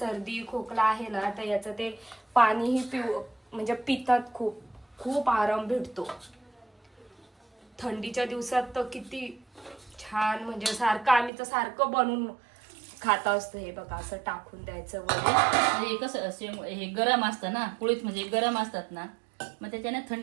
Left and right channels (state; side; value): drops out; left; at 11.3 s